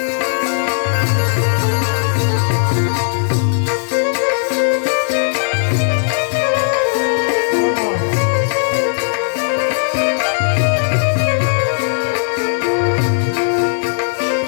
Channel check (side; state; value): right; silent; 69 dB below the other